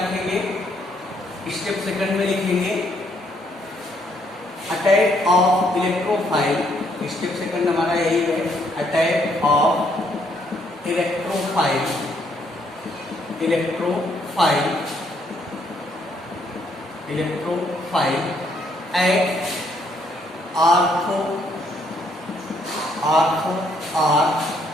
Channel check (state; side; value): normal; both; correlation 0.70